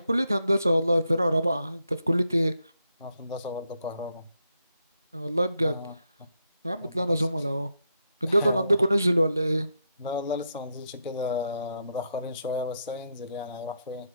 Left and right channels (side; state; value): both; inverted; correlation -0.81